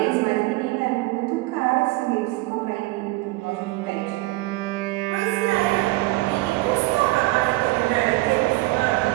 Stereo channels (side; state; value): left; quieter; 21.0 dB